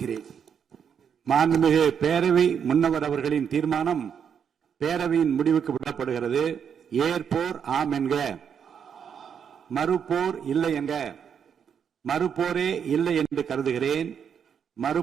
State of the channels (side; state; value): left; quieter; 7.6 dB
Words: மாண்புமிகு பேரவை முன்னவர் அவர்களின் தீர்மானம் பேரவையின் முடிவுக்கு விடப்படுகிறது. ஏற்போர் ஆம் என்க, மறுப்போர் இல்லை என்க. மறுப்போரே இல்லை என்று கருதுகிறேன்.